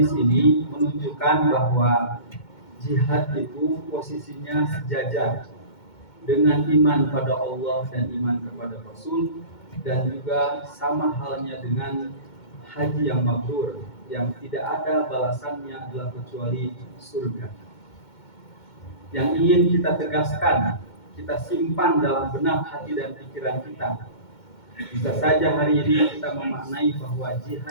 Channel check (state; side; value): late; right; 2.2 ms